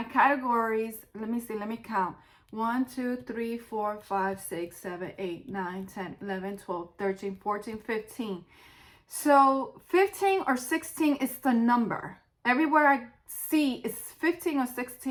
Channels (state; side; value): identical; both; correlation 1.00